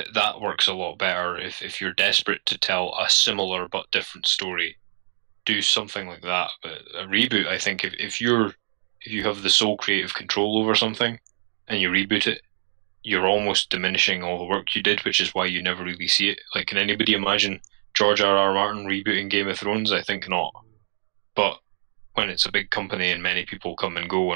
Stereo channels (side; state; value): left; silent; digital silence